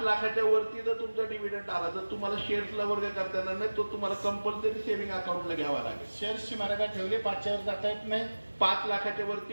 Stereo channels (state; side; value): inverted; both; correlation -1.00